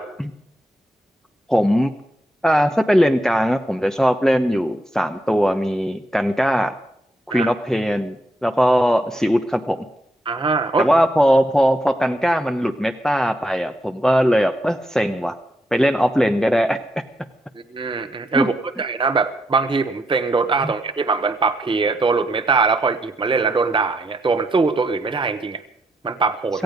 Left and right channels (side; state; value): both; normal; correlation 0.80